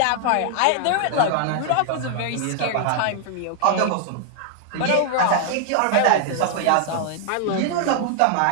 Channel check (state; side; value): different; both; correlation 0.00